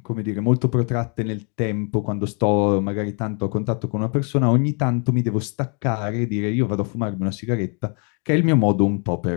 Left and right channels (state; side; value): quieter; right; 38.1 dB